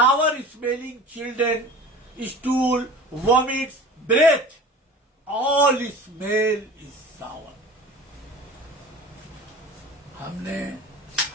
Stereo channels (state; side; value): normal; both; correlation 0.39